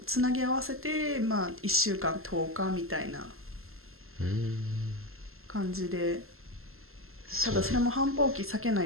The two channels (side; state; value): left; late; 0.62 ms